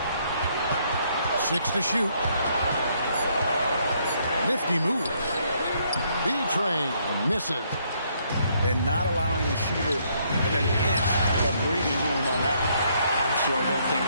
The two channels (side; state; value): both; inverted; correlation -0.70